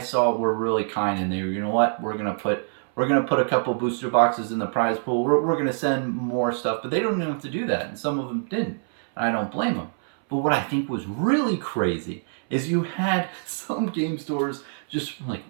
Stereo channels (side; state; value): left; silent; 61 dB below the other